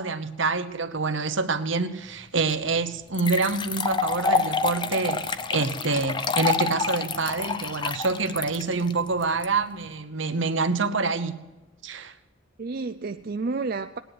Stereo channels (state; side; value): normal; both; correlation -0.02